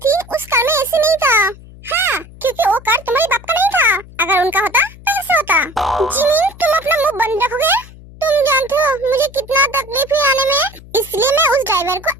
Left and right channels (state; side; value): noise; left; hum, 20 dB below the sound